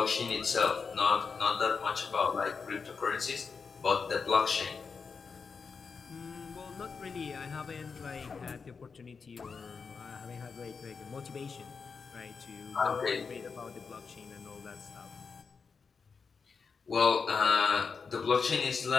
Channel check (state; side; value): quieter; right; 5.3 dB